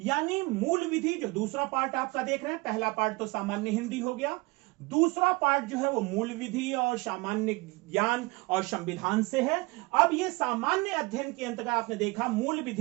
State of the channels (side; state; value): left; quieter; 24.8 dB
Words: मूल विधि जो दूसरा पार्ट आपका देख रहे हैं, पहला पार्ट तो सामान्य हिंदी हो गया, दूसरा पार्ट जो है वो मूल विधि और सामान्य ज्ञान और संविधान से है। अब ये सामान्य अध्ययन के अंतर्गत आपने देखा मूल